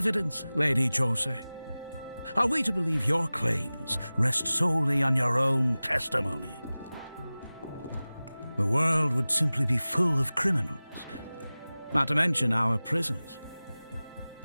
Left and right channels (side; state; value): both; inverted; correlation -0.98